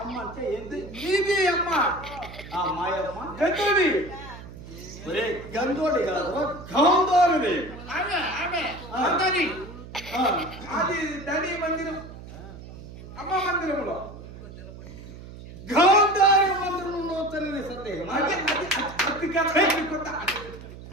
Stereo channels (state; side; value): noise; right; hum, 14 dB below the sound